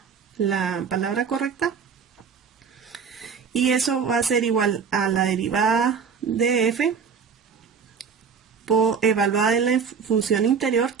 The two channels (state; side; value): quieter; left; 6.2 dB